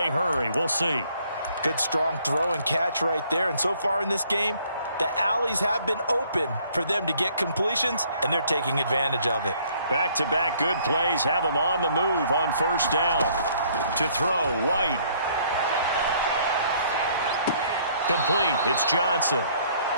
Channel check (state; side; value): inverted; both; correlation -0.62